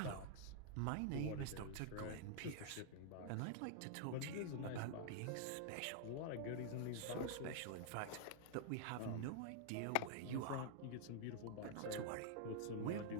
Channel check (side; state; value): both; different; correlation -0.01